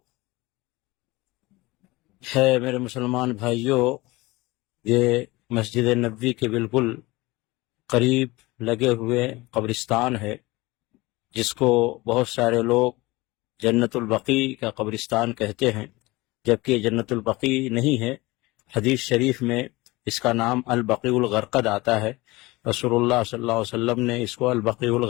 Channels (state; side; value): quieter; right; 21.6 dB